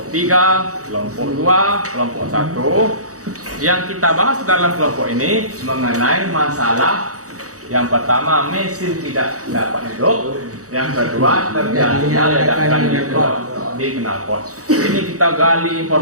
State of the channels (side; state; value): left; late; 0.66 ms